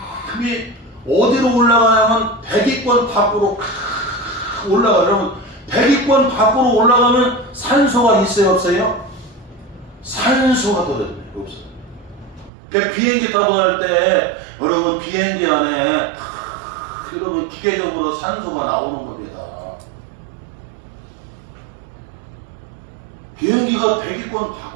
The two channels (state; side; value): drops out; left; at 12.5 s